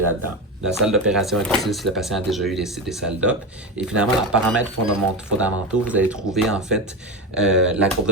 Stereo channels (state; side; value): normal; both; correlation 0.18